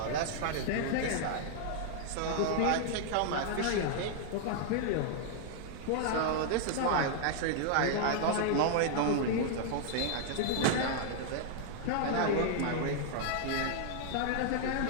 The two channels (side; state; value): both; different; correlation -0.01